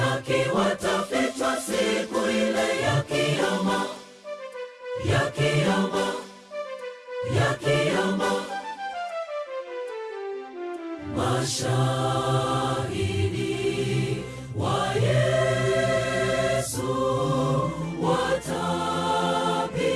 watafichwa siku ile ya kiyama, ya kiyama, ya kiyama. Mashahidi wa Yesu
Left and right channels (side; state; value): both; identical; correlation 1.00